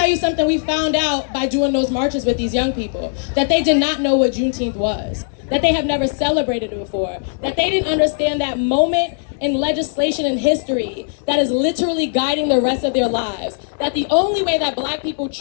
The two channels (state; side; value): silent; right; 64 dB below the other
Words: you something we found out by doing those marches with these young people, that they did not know what Juneteenth was, that they have never celebrated it before, that they didn't understand that moment in legislation and history that is literally guiding the rest of their lives. That the only way that black people